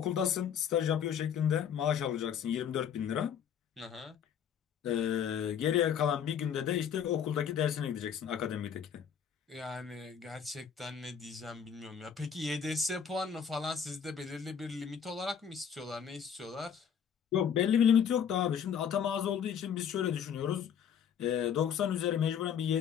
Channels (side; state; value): right; quieter; 8.0 dB